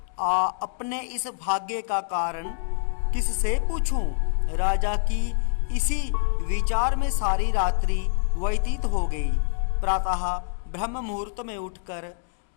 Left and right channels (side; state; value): right; silent; digital silence